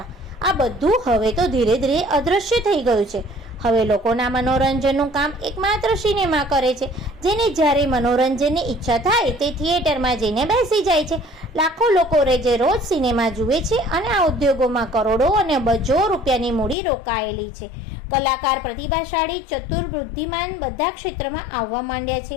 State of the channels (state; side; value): drops out; right; at 16.8 s